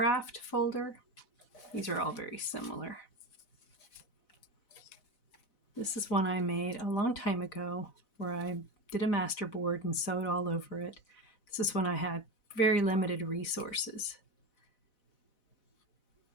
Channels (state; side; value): late; right; 4.0 ms